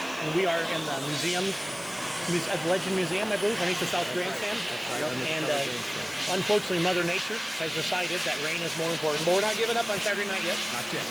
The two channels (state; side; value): noise; right; hiss, 18 dB below the sound